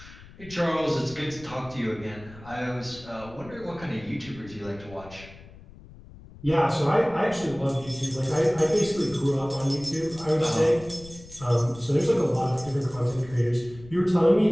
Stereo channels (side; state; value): left; noise; rumble, 19 dB below the sound